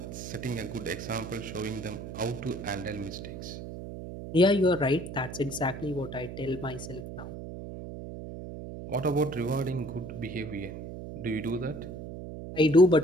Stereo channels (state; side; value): noise; right; hum, 9 dB below the sound